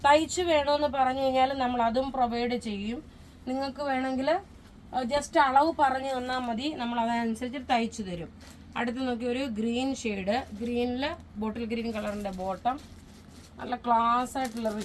തയ്ച്ച് വേണമെന്ന് പറഞ്ഞു കഴിഞ്ഞാൽ നമ്മൾ അതും പ്രൊവൈഡ് ചെയ്യും. നിങ്ങൾക്ക് വേണമെങ്കിൽ ജസ്റ്റ് അളവ് പറഞ്ഞു തന്നാൽ മതി, നമ്മൾ അതനുസരിച്ച് തയ്ച്ചു തരും. അടുത്ത് നോക്കി ഒരു ഗ്രീൻ ഷെയ്ഡ്, ഗ്രീനിൽ ബോട്ടിൽ ഗ്രീൻ കളറിൻ്റെ ബോട്ടം, നല്ല ക്ലാസ് ആയിട്ടുള്ള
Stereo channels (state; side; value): identical; both; correlation 1.00